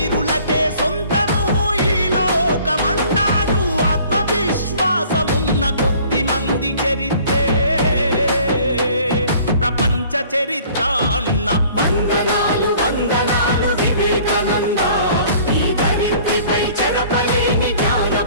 సొంతము ఈ లోకమన్నాడు ఆత్మవిశ్వాసమున్న కొద్ది మంది చరిత్రే ప్రపంచ చరిత్ర అన్న వందనాలు వందనాలు వివేకానంద ఈ ధరిత్రిపై చెరపలేని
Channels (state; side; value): inverted; both; correlation -0.52